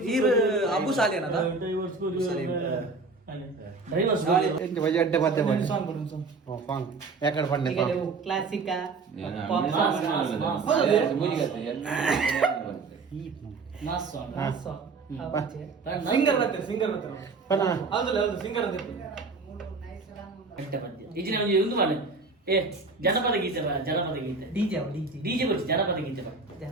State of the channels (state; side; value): quieter; left; 4.2 dB